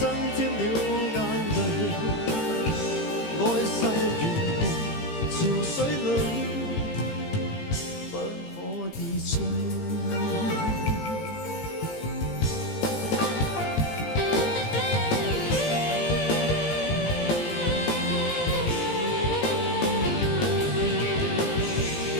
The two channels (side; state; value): right; late; 19 ms